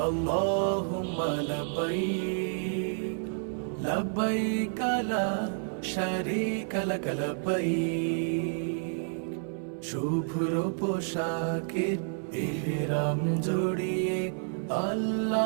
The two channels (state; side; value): silent; left; 58 dB below the other